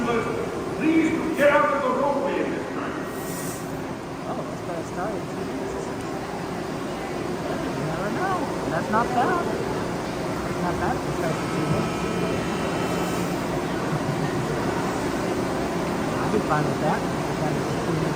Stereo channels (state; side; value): identical; both; correlation 1.00